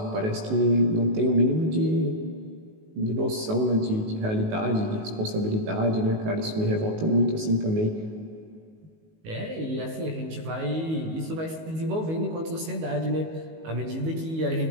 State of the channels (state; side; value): late; left; 19 ms